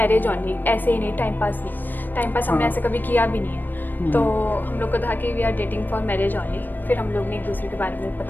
only, ऐसे ही नहीं, टाइम पास नहीं। टाइम पास हमने हाँ। ऐसे कभी किया भी नहीं है। तो हम लोग को था कि we are dating for marriage only. फिर हम लोग ने एक दूसरे के बारे में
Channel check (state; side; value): late; right; 0.091 ms